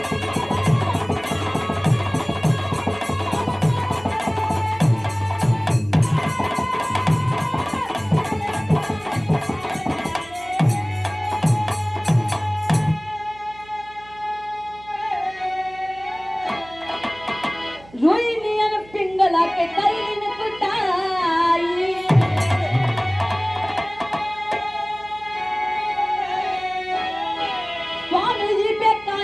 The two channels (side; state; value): right; noise; hum, 23 dB below the sound